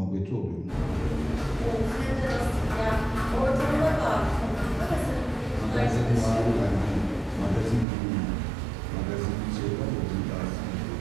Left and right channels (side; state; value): left; drops out; at 7.9 s